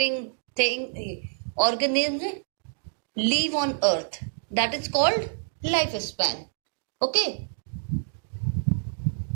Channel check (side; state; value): left; silent; digital silence